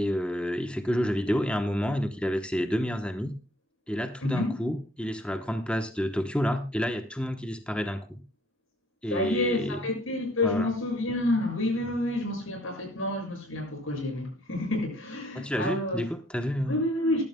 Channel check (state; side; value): normal; both; correlation 0.63